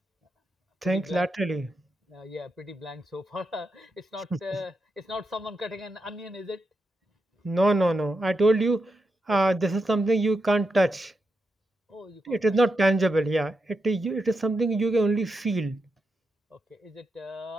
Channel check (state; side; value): normal; both; correlation 0.86